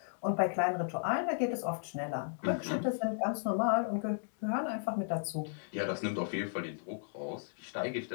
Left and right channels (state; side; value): silent; right; 55 dB below the other